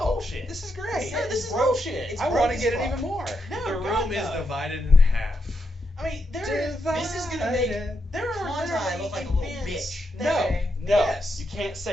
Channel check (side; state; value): both; normal; correlation 0.83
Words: This is great. No, this is broke. bullshit. It's I broke want to as get it fuck. even more. No, The God, room is no. divided in half. I mean, This is gonna make there are Quantai literally look like a little events bitch. that- No, Yes. you can't